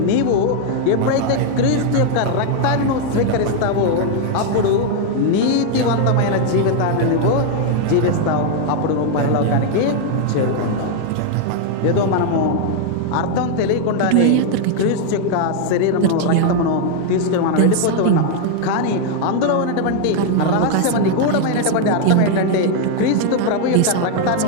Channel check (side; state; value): both; different; correlation 0.00